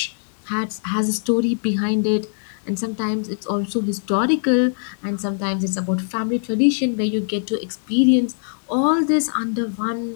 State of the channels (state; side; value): silent; right; digital silence